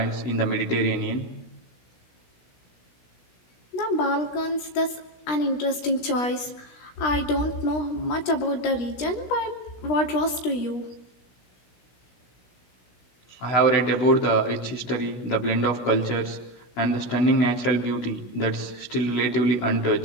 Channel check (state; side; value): late; right; 17 ms